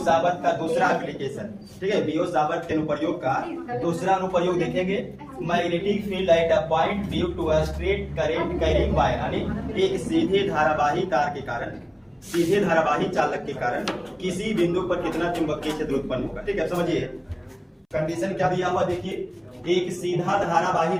का दूसरा application, ठीक है। बीओ साबत के अनुप्रयोग का दूसरा अनुप्रयोग देखेंगे। Magnetic field at a point due to a straight current carrying wire, यानी एक सीधे धारावाही तार के कारण, सीधे धारावाही चालक के कारण किसी बिंदु पर कितना चुंबकीय क्षेत्र उत्पन्न होगा। ठीक है, समझिए कंडीशन क्या दिया हुआ। देखिए एक सीधा धारावाही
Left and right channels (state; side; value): identical; both; correlation 1.00